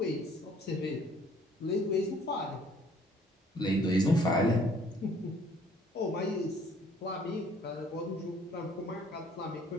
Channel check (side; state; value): both; normal; correlation 0.58